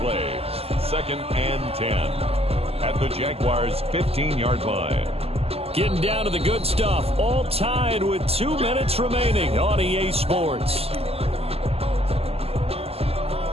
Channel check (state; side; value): late; left; 0.29 ms